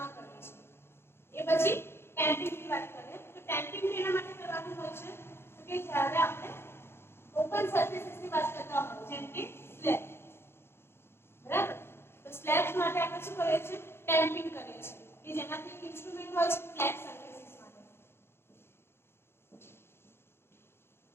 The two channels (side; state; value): right; late; 0.12 ms